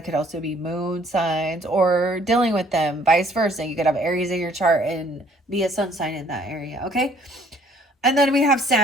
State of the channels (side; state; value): both; normal; correlation 0.60